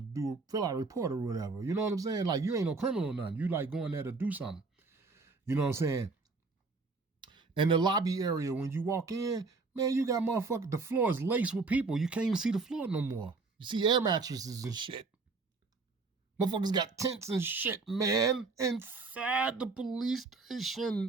to fill out a report or whatever. You know what I'm saying? Like, you ain't no criminal or nothing. You like going there to do something. You know what I'm saying? And the lobby area, when you walk in, man, you got motherfucker, the floor is laced with people. You can't even see the floor no more. You see air mattresses and shit. Motherfuckers got tents and shit, man, inside the police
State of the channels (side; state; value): left; quieter; 4.0 dB